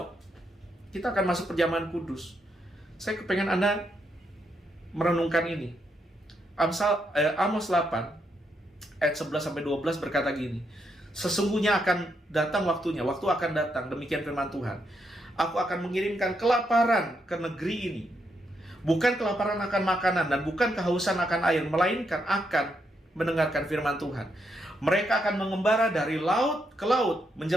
kita akan masuk perjamuan kudus. Saya kepengen Anda merenungkan ini. Amos 8 ayat 11-12 berkata gini, sesungguhnya akan datang waktunya, waktu akan datang, demikian firman Tuhan, aku akan mengirimkan kelaparan ke negeri ini. Bukan kelaparan akan makanan dan bukan kehausan akan air, melainkan akan mendengarkan firman Tuhan. Mereka akan mengembara dari laut ke laut,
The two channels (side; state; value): both; normal; correlation 0.79